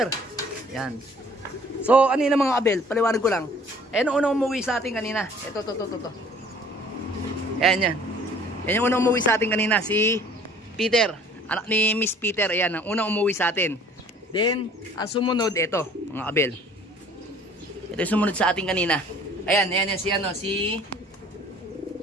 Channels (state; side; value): normal; both; correlation 0.53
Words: Yan. So, ano yun mga kabel? Paliwanag ko lang. Ayan ang unang umuwi sa atin kanina. Ito. Ayan. Yan yung unang umuwi sa atin kanina. Si Peter. Anak ni Miss Peter. Ayan, ang unang umuwi sa atin. Then, ang sumunod, ito, mga kabel. Ito yung sumunod sa atin kanina. Ayan,